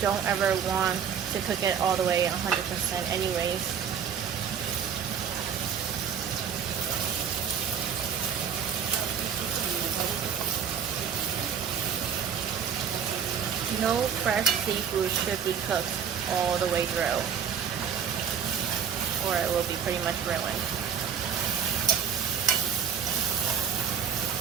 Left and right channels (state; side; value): quieter; left; 7.7 dB